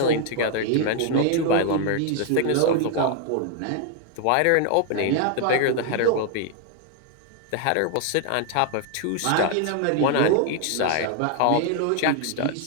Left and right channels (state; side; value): different; both; correlation 0.00